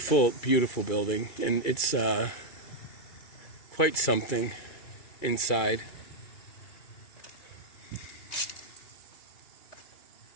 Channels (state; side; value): late; right; 2.4 ms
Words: beautiful building, and it's quite something inside.